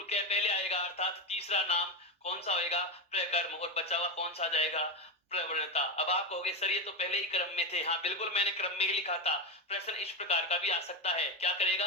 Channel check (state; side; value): normal; both; correlation 0.13